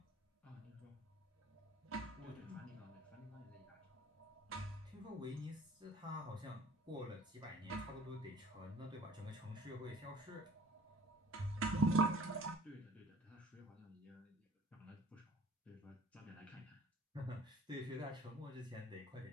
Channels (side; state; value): both; normal; correlation 0.49